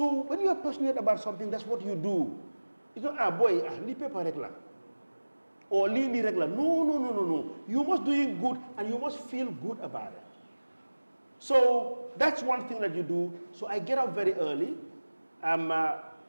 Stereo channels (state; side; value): inverted; both; correlation -1.00